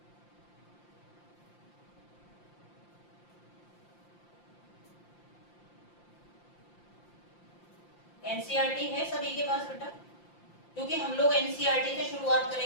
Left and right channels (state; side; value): late; right; 5.8 ms